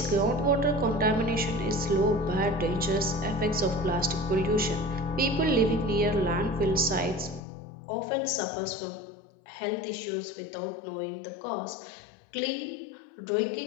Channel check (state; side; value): drops out; right; at 7.4 s